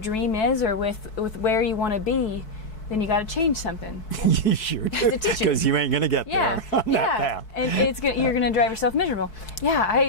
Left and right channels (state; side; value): late; right; 4.6 ms